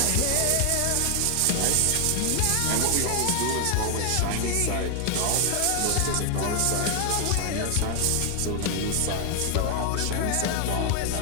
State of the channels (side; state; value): both; different; correlation 0.00